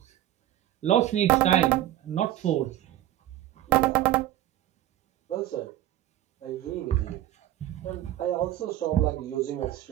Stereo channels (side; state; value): left; quieter; 13.5 dB